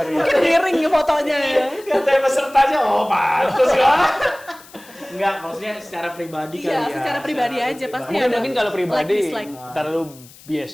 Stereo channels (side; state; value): left; noise; hiss, 22 dB below the sound